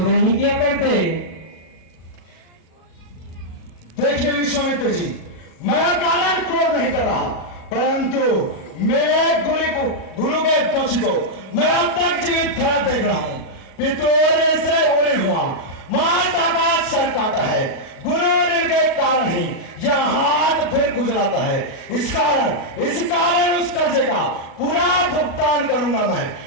नहीं किया करते। देखिए विश्वामित्र जी मैं कारण क्रोध नहीं कर रहा परंतु मेरे गुरु के दोषी को मैं अब तक जीवित खड़ा देख रहा हूँ। पितोरे से उड़े हुआ माता का सर काटा है गुरु के कारण ही यह हाथ फिर गुजराता है। इस कारण उस कर्जे का पूरा भुगतान करूंगा मैं।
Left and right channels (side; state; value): right; late; 37 ms